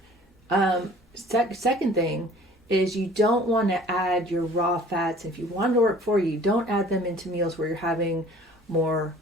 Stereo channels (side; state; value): both; normal; correlation 0.50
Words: Second thing is you don't want to add your raw fats. If you want to work for you, don't add them into meals where you're having more